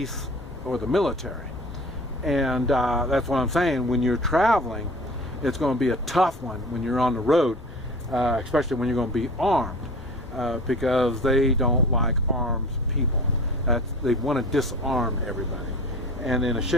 or the military. And that's what I'm saying. When you're traveling, it's going to be a tough one when you're on the road, especially when you're going to be armed, because they don't like armed people. They want to disarm everybody. And then a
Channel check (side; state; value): both; normal; correlation 0.40